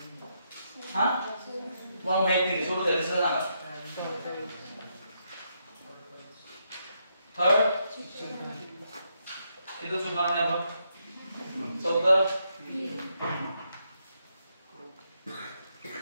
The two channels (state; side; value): inverted; both; correlation -0.79